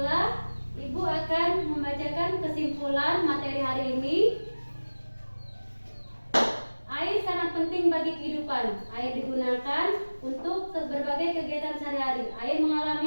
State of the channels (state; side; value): inverted; both; correlation -1.00